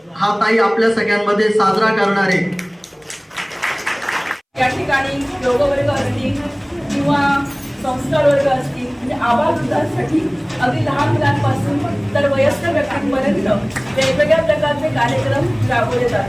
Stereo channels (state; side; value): identical; both; correlation 1.00